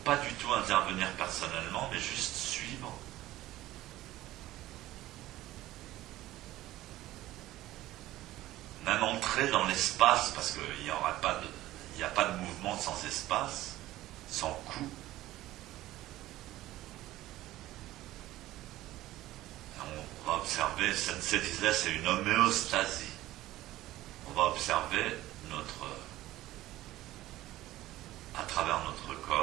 pas du tout intervenir personnellement, mais juste suivre. Même entrer dans l'espace, parce qu'il n'y a pas de mouvement sans espace, sans coup. On va observer, Sensei disait, c'est une homéostasie. On va observer à travers notre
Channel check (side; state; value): left; quieter; 15.8 dB